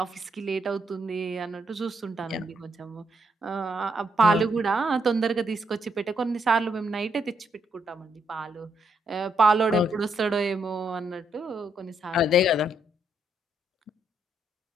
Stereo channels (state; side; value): normal; both; correlation 0.76